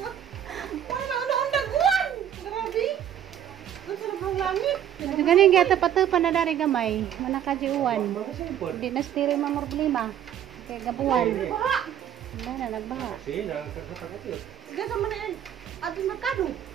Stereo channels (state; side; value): quieter; left; 10.1 dB